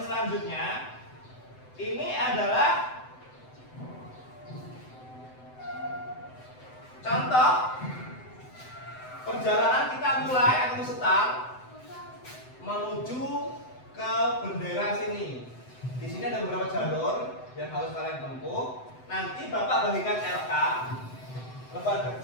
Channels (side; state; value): right; late; 7.9 ms